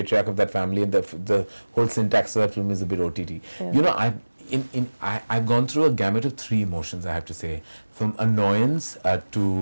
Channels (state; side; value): inverted; both; correlation -1.00